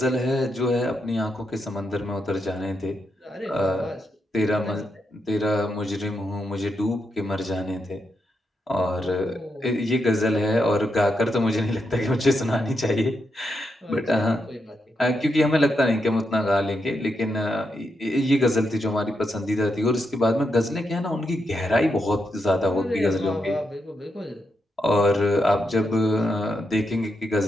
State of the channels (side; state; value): both; normal; correlation 0.84